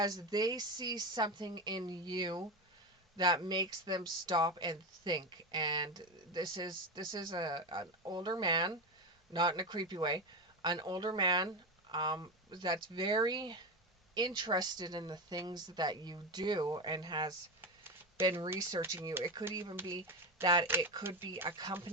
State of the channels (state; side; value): normal; both; correlation 0.17